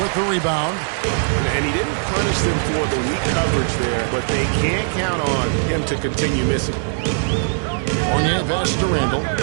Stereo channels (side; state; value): left; silent; 66 dB below the other